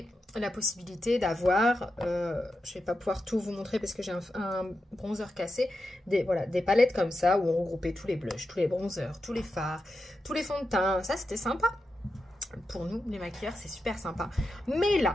la possibilité d'avoir, je ne vais pas pouvoir tout vous montrer parce que j'ai un bronzer cassé, des palettes comme ça où on regroupait tous les blushs, tous les bronzers, tous les fards, tous les fonds de teint. Ça, c'était sympa. Pour nous, les maquilleurs, c'est super sympa. Mais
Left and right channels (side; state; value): both; normal; correlation 0.88